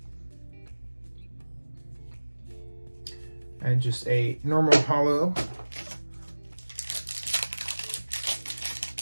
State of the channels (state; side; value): inverted; both; correlation -1.00